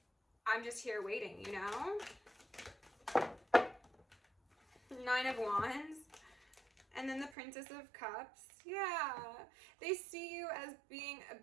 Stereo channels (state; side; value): drops out; left; at 7.4 s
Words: I'm just here waiting, you know? 9 of Wands. And then the Princess of Cups. Yeah. They see you as being a